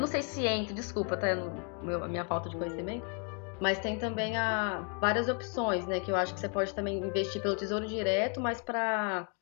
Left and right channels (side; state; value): right; quieter; 39.3 dB